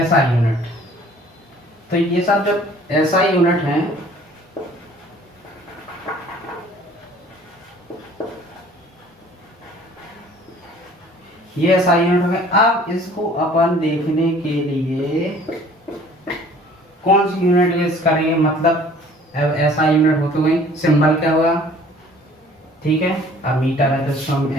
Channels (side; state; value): both; normal; correlation 0.52